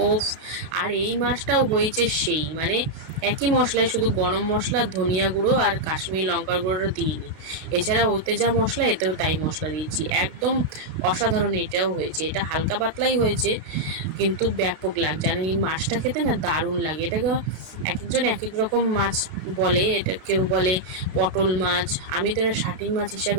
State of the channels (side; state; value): left; late; 32 ms